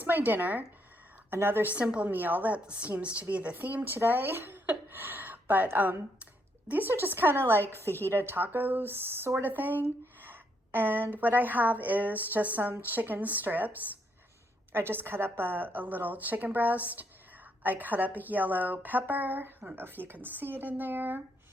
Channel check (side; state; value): both; normal; correlation 0.75